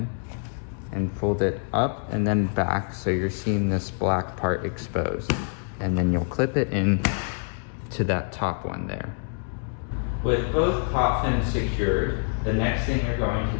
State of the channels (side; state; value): right; silent; 61 dB below the other